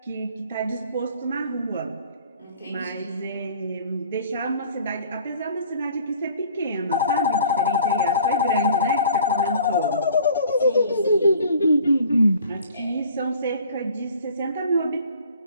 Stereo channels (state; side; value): inverted; both; correlation -0.51